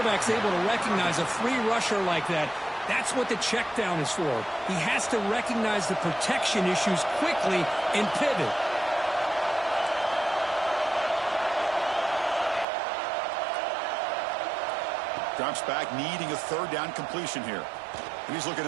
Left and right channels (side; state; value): left; drops out; at 12.7 s